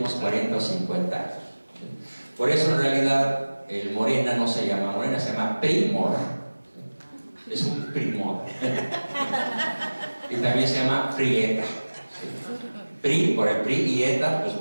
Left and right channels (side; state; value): both; inverted; correlation -1.00